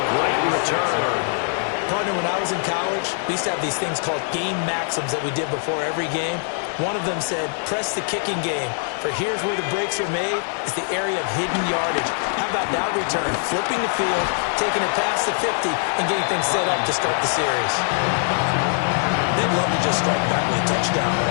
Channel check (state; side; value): silent; right; 56 dB below the other